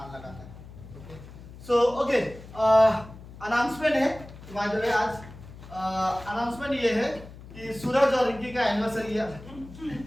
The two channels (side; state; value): left; noise; hum, 17 dB below the sound